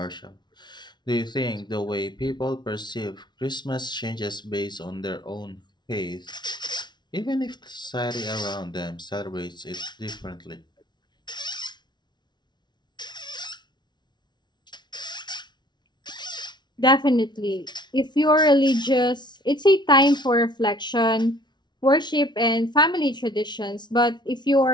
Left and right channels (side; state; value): right; late; 0.21 ms